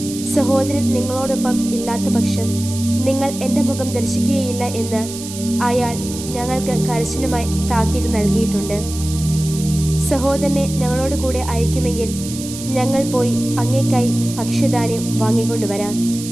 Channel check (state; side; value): noise; right; hiss, 11 dB below the sound